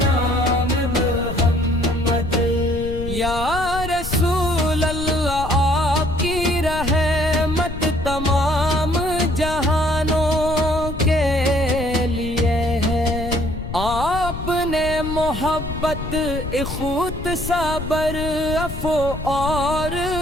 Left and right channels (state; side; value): noise; left; rumble, 7 dB below the sound